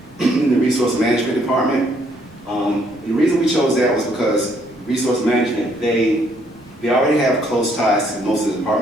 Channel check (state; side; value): normal; both; correlation 0.68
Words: in the resource management department. The reason we chose that was because resource management, they already have close ties to most of the